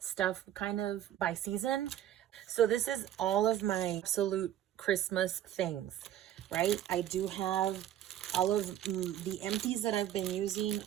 kind of by season. So this is all of my absolute Christmas things, right? I do have all of the empties that I've been using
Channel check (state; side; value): quieter; left; 11.7 dB